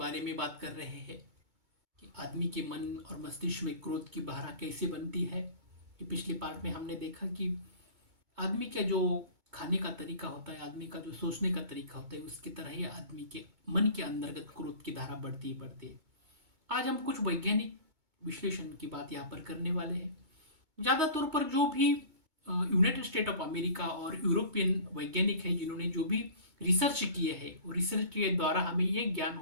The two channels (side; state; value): left; late; 2.2 ms